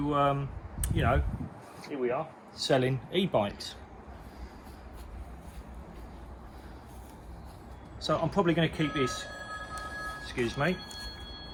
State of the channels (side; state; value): both; identical; correlation 1.00